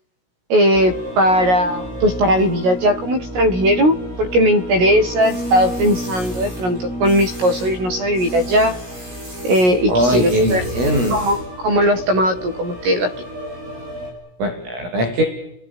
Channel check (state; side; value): late; left; 16 ms